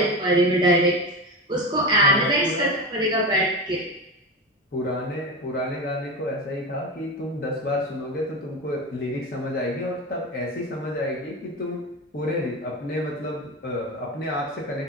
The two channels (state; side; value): normal; both; correlation 0.23